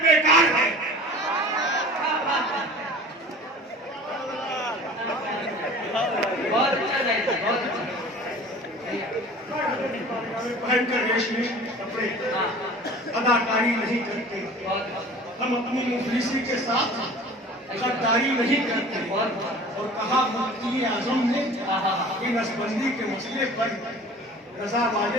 बेकार है। बहुत अच्छा जाएगा, बहुत अच्छा। पहनकर रेशमी कपड़े अदाकारी नहीं करते, हम अपनी मुफलिसी के साथ गद्दारी नहीं करते। और कहा मुफ्ती आजम ने कि नसबंदी के मसले पर रजा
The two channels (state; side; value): normal; both; correlation 0.43